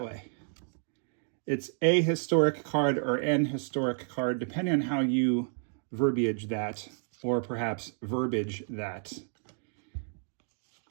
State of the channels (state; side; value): silent; left; digital silence